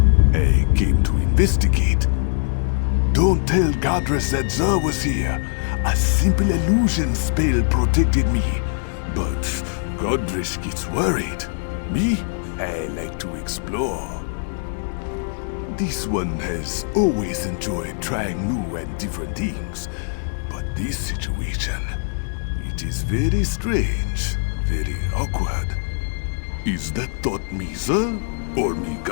I came to investigate. Don't tell Godress that Sir was here. A simple illusion spell protected me. But Godress gets worried. Me? I like to explore. This one has always enjoyed trying new and different things. But this situation, it is very strange, very awkward. Is that thought me, sir? Or me,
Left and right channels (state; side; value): silent; right; digital silence